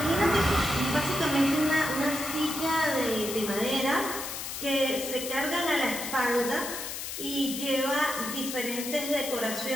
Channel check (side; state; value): left; noise; hiss, 6 dB below the sound